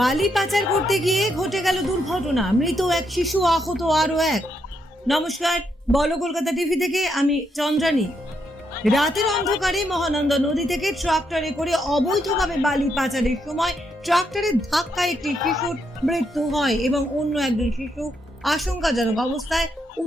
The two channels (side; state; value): both; normal; correlation 0.78